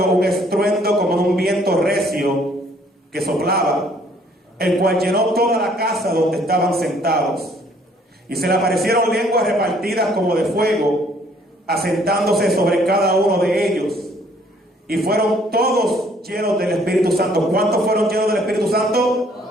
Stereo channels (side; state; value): both; normal; correlation 0.62